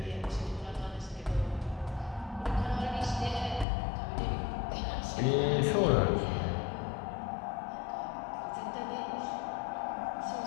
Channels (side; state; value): right; drops out; at 3.7 s